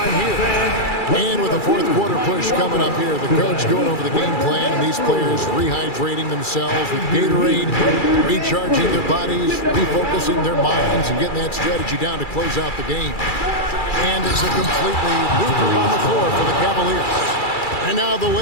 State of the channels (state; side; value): late; right; 2.3 ms